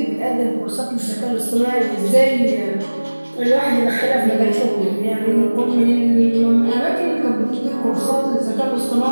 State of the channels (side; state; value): both; inverted; correlation -1.00